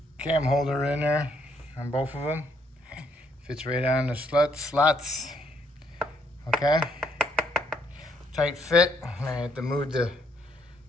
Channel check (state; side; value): normal; both; correlation 0.71